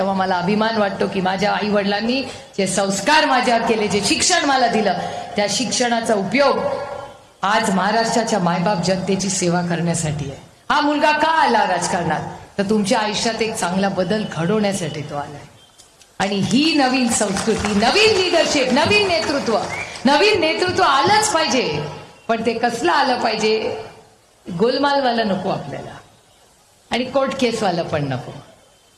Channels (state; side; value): identical; both; correlation 1.00